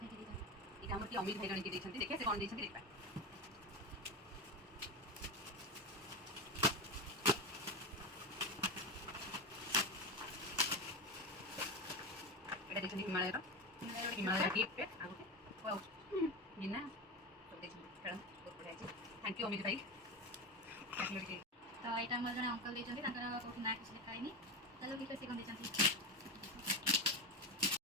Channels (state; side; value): normal; both; correlation 0.19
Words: के देछन एटा हमर की अमित भाई जण के देछन देखिए से कोन देछन देखबा एटा देछन हिमालय गिफ्ट आगुटे वाओ बिना तो देछन खेलन बहुत बढ़िया छै। थैंक यू अमित भाई। तो एटा हमर जण अंकल देछन ताकर को ना किछ लिखाइनी चलो कि कैसे कोन देछन